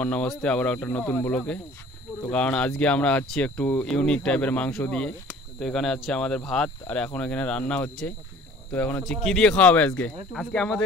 আর নমস্তে আবার একটা নতুন ব্লগে। তো কারণ আজকে আমরা আছি একটু ইউনিক টাইপের মাংস দিয়ে। তো এখানে আছে আমাদের ভাত আর এখন এখানে রান্না হচ্ছে। তো এখন হচ্ছে কি দিয়ে খাওয়া হবে আজকে? আজকে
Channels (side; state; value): both; normal; correlation 0.49